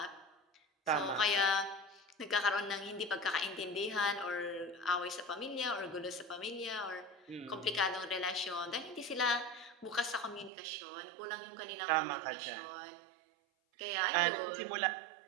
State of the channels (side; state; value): left; drops out; at 10.5 s